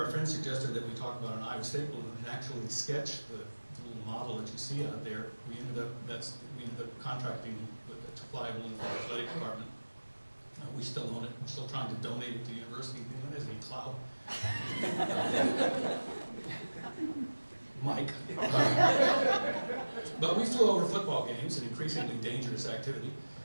friends suggested that we talk about an Iowa State balloon and actually sketch the little model that you see out there. We ended up contracting to fly a balloon for the athletic department. We still own it. We're still trying to donate it to the university. Anyone has any clout? Mike. But we flew over football games, an increasingly dangerous activity.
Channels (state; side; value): inverted; both; correlation -1.00